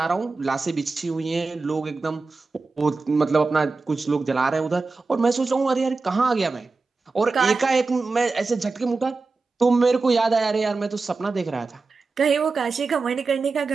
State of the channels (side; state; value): left; quieter; 4.0 dB